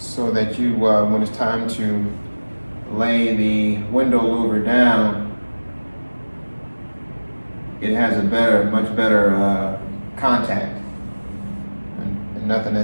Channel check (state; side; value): inverted; both; correlation -1.00